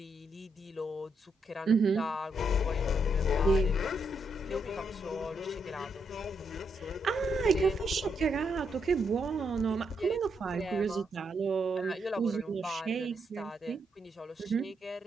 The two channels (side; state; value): both; normal; correlation 0.79